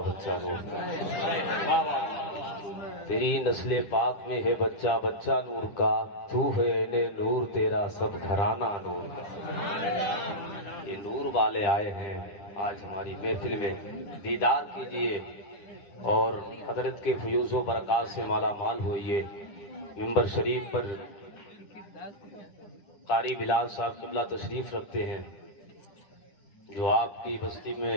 بچہ نور کا، تیری نسل پاک میں ہے بچہ بچہ نور کا، تو ہے اہل نور تیرا سب گھرانہ نور کا۔ یہ نور والے آئے ہیں آج ہماری محفل میں، دیدار کیجئے اور حضرت کے فیوز و برکات سے مالا مال ہوئیے۔ ممبر شریف پر قاری بلال صاحب قبلہ تشریف رکھتے ہیں، جو آپ کی بستی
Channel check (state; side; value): late; right; 10 ms